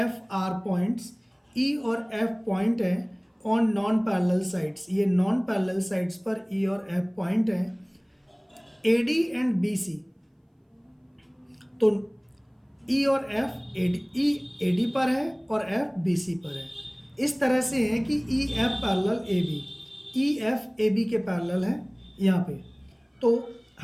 F are points, E और F पॉइंट है ऑन नॉन पैरेलल साइड्स। ये नॉन पैरेलल साइड्स पर E और F पॉइंट हैं। AD एंड BC, तो E और F E AD पर है और F BC पर है। इस तरह से है कि EF parallel AB, EF AB के पैरेलल है यहाँ पे। तो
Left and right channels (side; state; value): both; identical; correlation 1.00